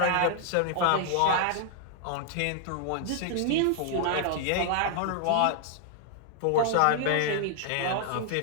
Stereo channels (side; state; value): both; different; correlation 0.00